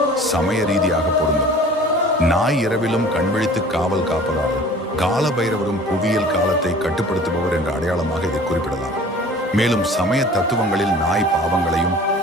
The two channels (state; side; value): normal; both; correlation 0.46